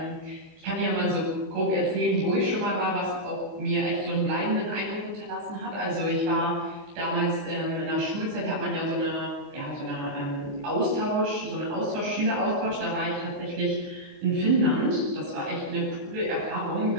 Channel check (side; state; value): left; late; 27 ms